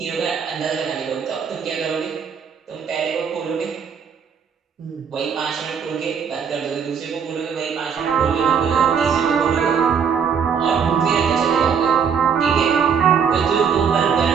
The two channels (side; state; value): left; quieter; 6.9 dB